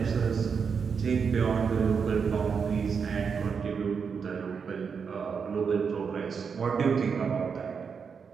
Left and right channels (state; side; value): quieter; left; 6.1 dB